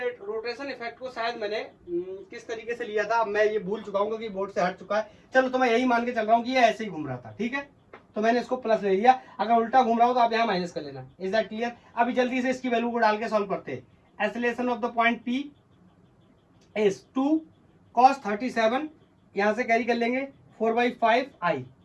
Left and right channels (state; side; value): identical; both; correlation 1.00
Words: इफेक्ट को शायद मैंने किस तरीके से लिया था, अब मैं ये भूल चुका हूँ क्योंकि बोर्ड से हट चुका है। चलो तो मैं यही मान के चल रहा हूँ कि ये ऐसे ही घूम रहा था, ठीक है, तो मैंने इसको प्लस ले लिया। अगर उल्टा घूम रहा हो तो आप यहाँ माइनस कर लेना। Is that clear? अभी जल्दी से इसकी वैल्यू को डाल के सॉल्व करते हैं। Acceleration of the point P is 2 cos 37, यहां से कैरी कर लेंगे 4/5 I,